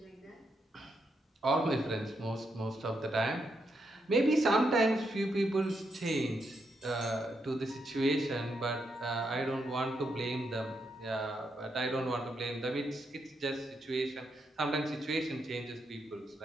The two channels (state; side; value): normal; both; correlation 0.81